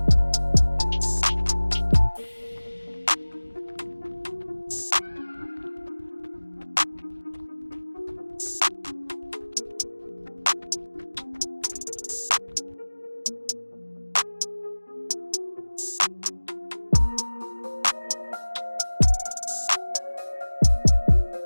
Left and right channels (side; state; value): both; inverted; correlation -1.00